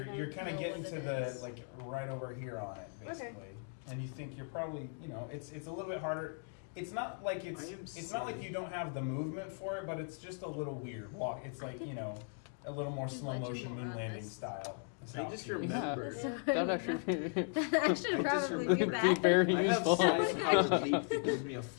anything. you're kind of Know getting what to it the is. like right over here on it, basically. And you think you're probably, you know, it's a little bit harder. It's not like it's not like you don't have the movement for it, but it's just a little weird walk. It's like, you know, a little more Do slow legend motion more moon on landing this. style. I just Yeah, remembered. that'd actually be, That should probably be be that. very I have useful. side leap that gives me a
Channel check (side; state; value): right; silent; 53 dB below the other